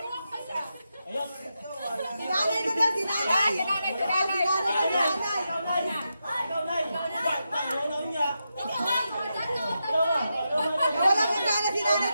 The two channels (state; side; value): inverted; both; correlation -0.87